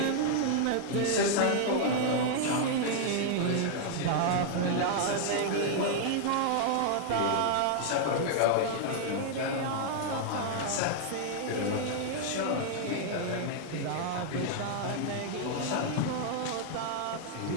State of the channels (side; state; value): both; different; correlation 0.00